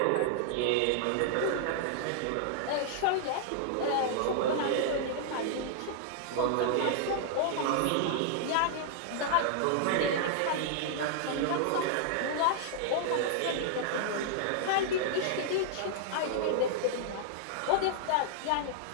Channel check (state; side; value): different; both; correlation -0.01